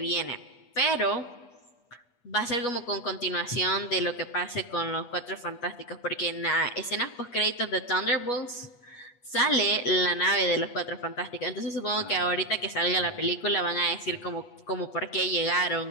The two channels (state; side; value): late; right; 8.2 ms